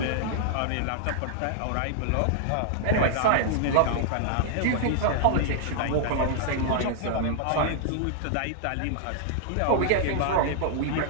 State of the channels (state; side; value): different; both; correlation -0.01